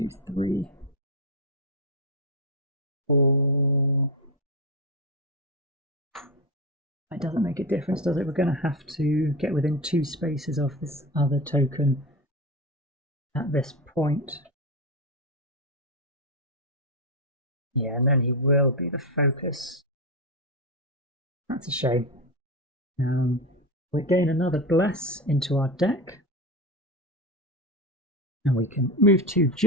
3, 4. It doesn't make a difference, does it? We're going to have to get within 2 spaces of this other token at this point. Yeah, and then he will be the focus. That's a shame. We gain another Bless into our deck. And we can move to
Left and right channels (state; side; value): normal; both; correlation 0.16